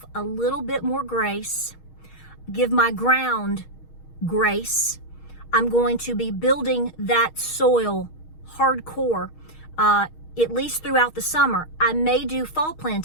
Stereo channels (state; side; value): late; right; 6.4 ms